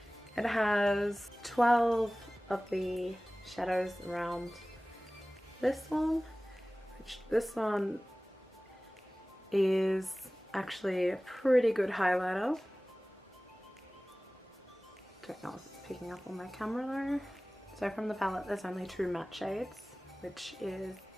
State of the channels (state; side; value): normal; both; correlation 0.98